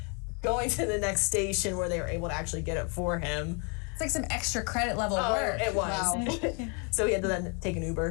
going to the next station where they were able to actually get it for him. It's like some extra credit level work. It was. Wow. So he had to then take an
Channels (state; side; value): quieter; right; 35.8 dB